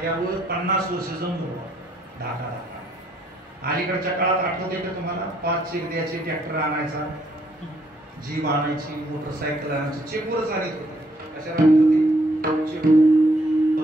50 वर्ष जमलो ढाका. अलीकडच्या काळात आठवते का तुम्हाला, 5 चेक द्यायचे, ट्रॅक्टर आणायचा, जीप आणायची, मोटरसायकल आणायची, चेकवरच आणत होते. कशाला आणत होते, चेक.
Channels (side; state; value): both; normal; correlation 0.69